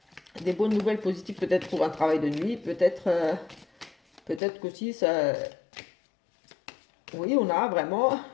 Des bonnes nouvelles positives peut-être pour un travail de nuit, peut-être qu'aussi ça. Oui, on a vraiment,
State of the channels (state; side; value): drops out; right; at 4.4 s